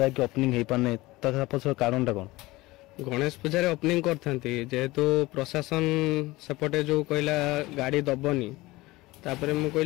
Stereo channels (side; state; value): right; quieter; 20.0 dB